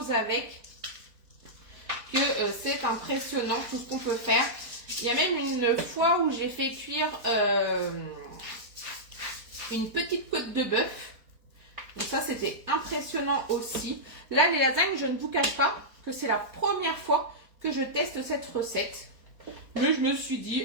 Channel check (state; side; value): late; left; 4.5 ms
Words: avec que c'est impressionnant tout ce qu'on peut faire. Il y a même une fois où j'ai fait cuire une petite côte de bœuf. Donc ça, c'était impressionnant aussi. Là, les lasagnes, je ne vous cache pas que c'est la première fois que je teste cette recette. Mais je me suis